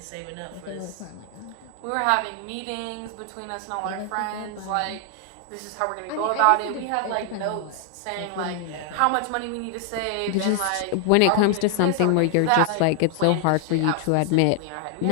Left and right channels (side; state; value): both; different; correlation 0.00